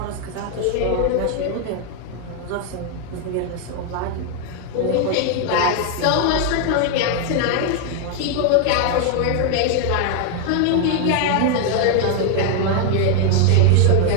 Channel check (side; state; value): both; different; correlation 0.00